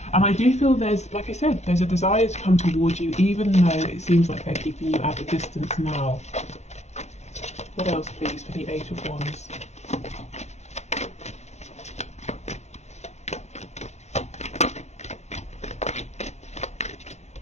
I do feel there's, like I said, there's a desire to come towards you, even though it seems like they're keeping you at a distance now. What else, please, for the Eight of Wands?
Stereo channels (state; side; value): late; right; 0.33 ms